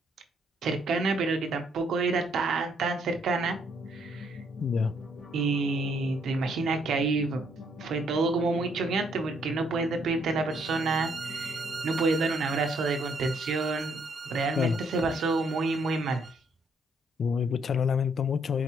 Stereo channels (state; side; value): normal; both; correlation 0.70